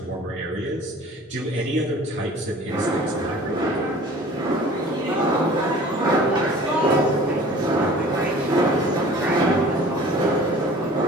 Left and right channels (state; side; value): normal; both; correlation 0.46